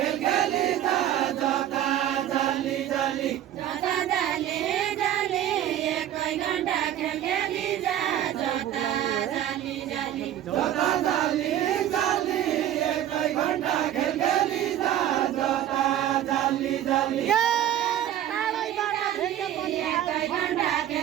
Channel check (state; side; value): quieter; left; 11.6 dB